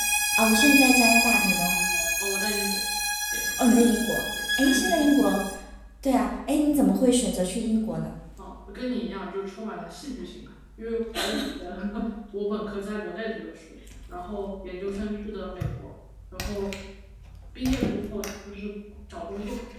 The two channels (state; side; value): identical; both; correlation 1.00